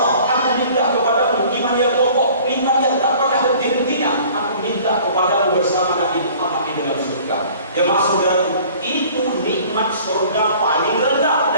aku minta kepadamu iman yang kokoh, iman yang tak pernah henti-hentinya. Aku minta kepadamu bersama Nabi Muhammad di dalam surga. Jemaah saudaraku, itu nikmat surga paling rendah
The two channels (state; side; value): inverted; both; correlation -0.50